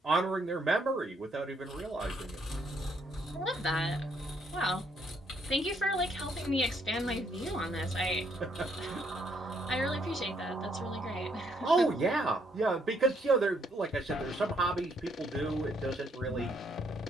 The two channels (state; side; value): normal; both; correlation 0.70